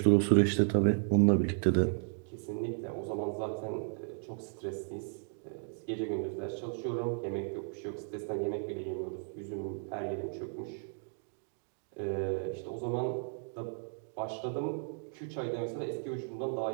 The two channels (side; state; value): left; silent; 55 dB below the other